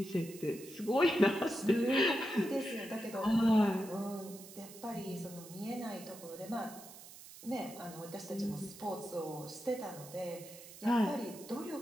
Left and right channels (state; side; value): noise; right; hiss, 16 dB below the sound